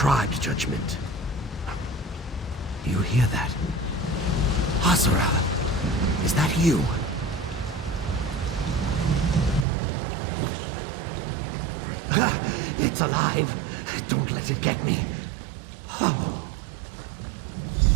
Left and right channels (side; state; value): left; drops out; at 9.7 s